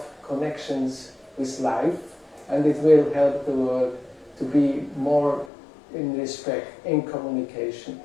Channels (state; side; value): drops out; right; at 5.5 s